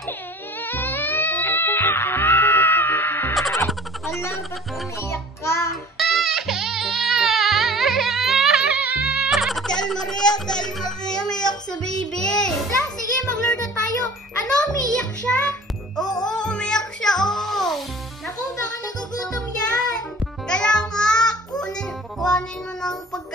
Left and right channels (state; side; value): normal; both; correlation 0.46